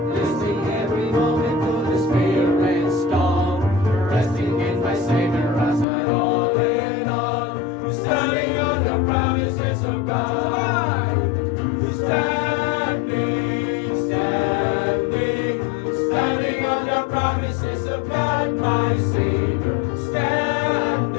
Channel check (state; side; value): drops out; right; at 5.9 s